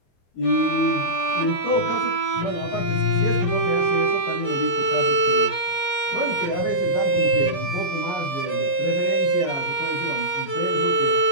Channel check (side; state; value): right; late; 22 ms